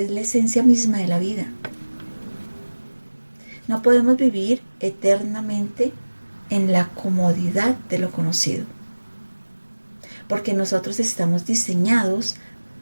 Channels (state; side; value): inverted; both; correlation -1.00